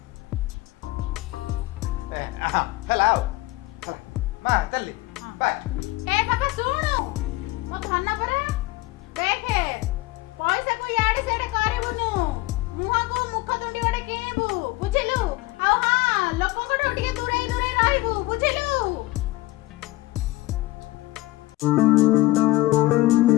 ହେଲା ଆଉ ମା ଚାଲିଲି ବାଏ। ଏ ବାବା ଶୁଣୁ ମୋ ଧନ ପରା ଦେଖେ ପଇସାକୁ ଇଆଡେ ସିଆଡେ କରିବୁନୁ ମୁହଁକୁ ମୁଖ ତୁଣ୍ଡି ଗୋଟେ କିଣିବୁ ବୁଝିଲୁ? ଆଉ ହଁ ଲୋକଙ୍କଠୁ ଟିକେ ଦୂରେଇ ଦୂରେଇ ରହିବୁ ବୁଝିଲୁ?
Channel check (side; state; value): right; quieter; 19.5 dB